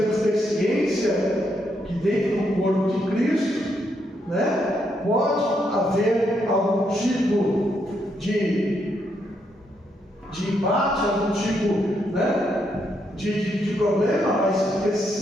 que ter ciência que dentro do corpo de Cristo, né, pode haver algum tipo de embate, algum tipo, né, de problema, mas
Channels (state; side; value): normal; both; correlation 0.78